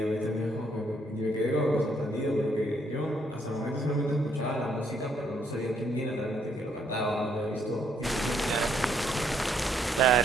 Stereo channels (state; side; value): normal; both; correlation 0.71